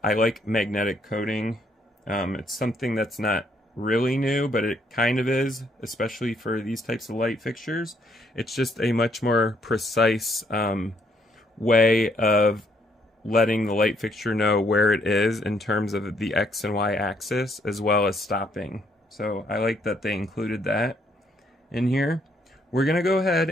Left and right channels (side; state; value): both; normal; correlation 0.70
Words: like magnetic coating. It's something that's not really new, but it kind of is, especially for these types of light fixtures. It's just a much more precise way of letting the light fixture know where it is in terms of the X and Y axis, as well as stopping. So I like that they included that in here. We're going to go